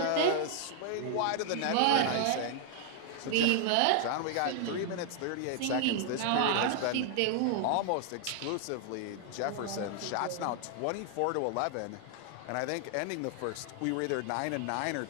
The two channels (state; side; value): different; both; correlation 0.00